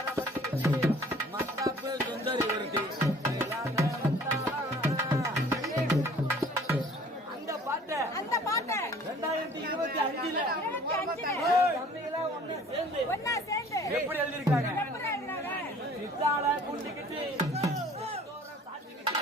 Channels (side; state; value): both; normal; correlation 0.51